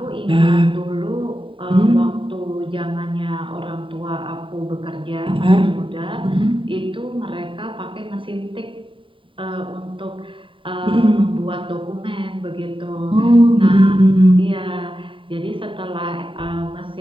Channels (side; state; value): left; late; 0.25 ms